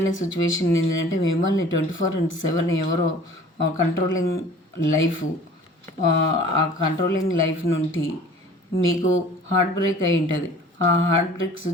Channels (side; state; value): both; normal; correlation 0.47